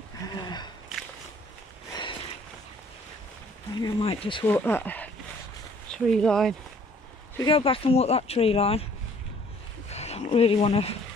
I think I might just walk that tree line. If we go back and walk that tree line, I don't really want to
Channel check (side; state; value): both; normal; correlation 0.58